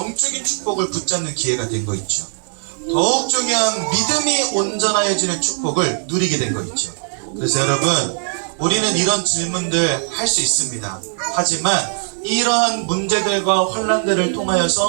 축복을 붙잡는 기회가 된 거 있죠. 더욱 중요한 믿음이 온전하여지는 축복을 누리게 된 거 있죠. 그래서 여러분, 우리는 이런 질문들 할 수 있습니다. 하지만 이러한 문제들과 환난들을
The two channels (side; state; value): left; silent; 64 dB below the other